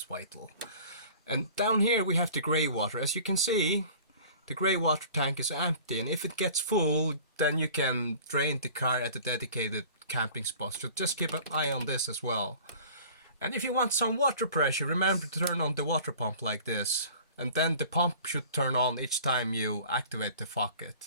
vital. And down here we have the grey water. As you can see, the grey water tank is empty, and if it gets full, then you can drain the car at the dedicated camping spot. So just keep an eye on this as well. And if you want some water pressure, remember to turn on the water pump like this. And then the pump should turn on each time you activate the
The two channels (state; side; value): inverted; both; correlation -0.45